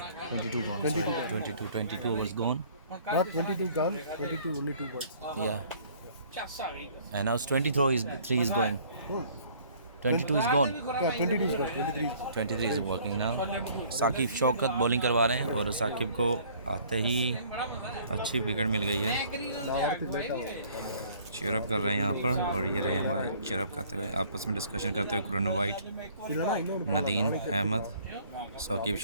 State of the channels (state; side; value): inverted; both; correlation -0.56